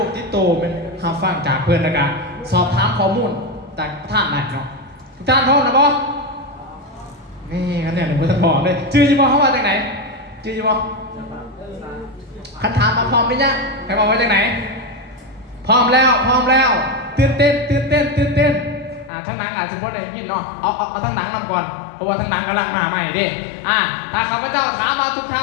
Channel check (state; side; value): drops out; right; at 19.1 s